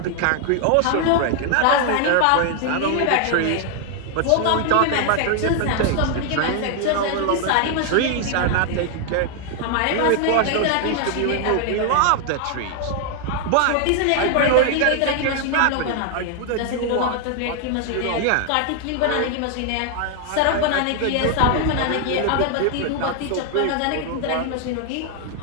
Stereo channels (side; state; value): both; different; correlation 0.00